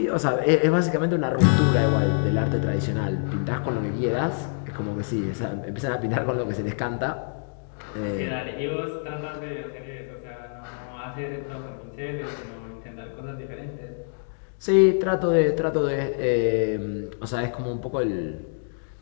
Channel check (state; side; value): silent; right; digital silence